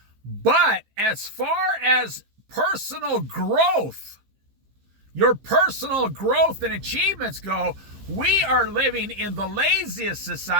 But as far as personal growth, your personal growth and achievements go, we are living in the laziest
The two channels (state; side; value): late; left; 15 ms